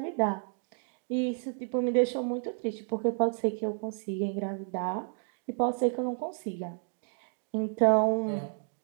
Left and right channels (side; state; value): left; silent; 57 dB below the other